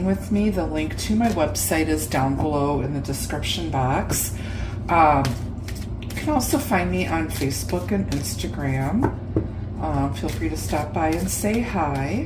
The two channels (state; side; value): identical; both; correlation 1.00